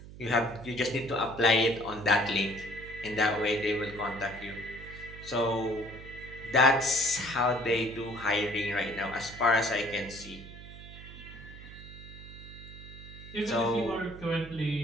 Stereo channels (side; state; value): right; noise; hum, 15 dB below the sound